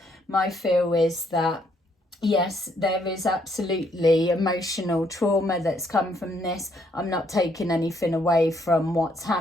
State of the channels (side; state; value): both; normal; correlation 0.71